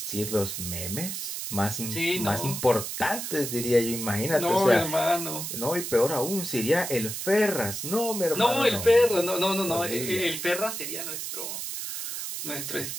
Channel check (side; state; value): right; noise; hiss, 5 dB below the sound